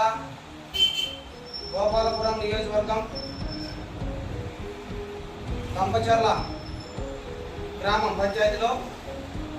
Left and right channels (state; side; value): identical; both; correlation 1.00